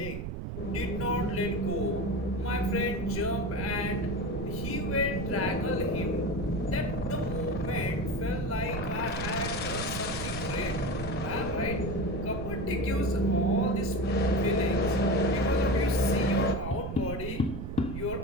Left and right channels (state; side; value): noise; right; rumble, 6 dB below the sound